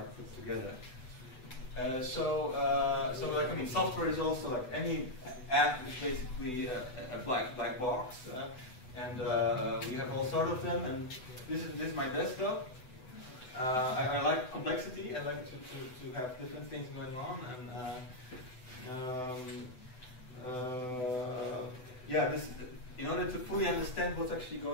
put together. So software is also like any app is basically a black box, and we have all sorts of them. And this is my desktop. I like complexity. I like to have different things going on, and this, in order to fully understand what's actually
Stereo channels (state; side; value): late; right; 8.0 ms